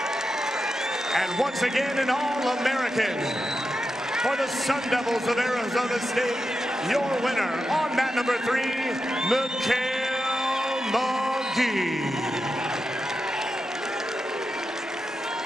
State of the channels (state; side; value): normal; both; correlation 0.89